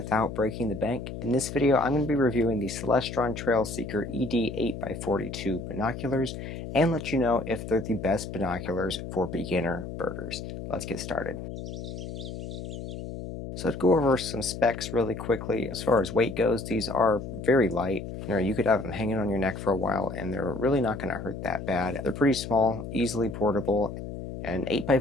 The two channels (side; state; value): left; noise; hum, 8 dB below the sound